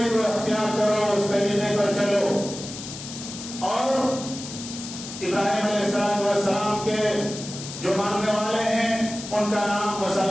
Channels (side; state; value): left; noise; hiss, 11 dB below the sound